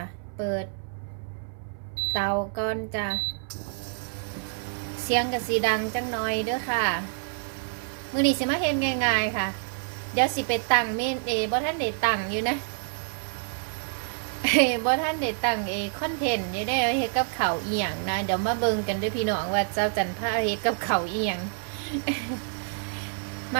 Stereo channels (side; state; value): left; silent; 60 dB below the other